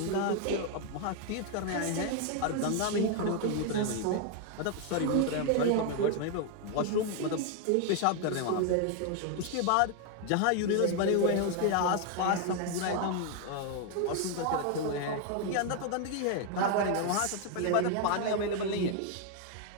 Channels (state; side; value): different; both; correlation 0.00